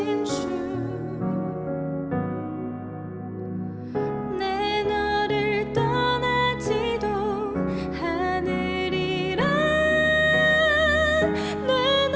주, 내 너를 떠나지도 않으리라, 내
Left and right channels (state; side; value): identical; both; correlation 1.00